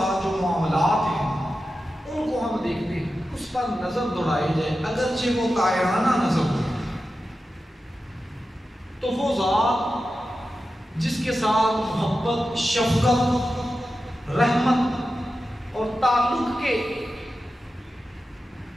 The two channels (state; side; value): normal; both; correlation 0.92